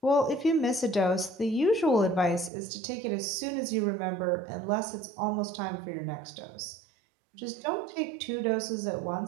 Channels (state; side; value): drops out; left; at 2.5 s